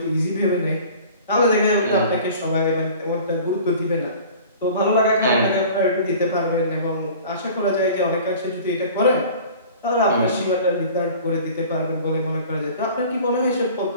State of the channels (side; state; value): both; inverted; correlation -0.44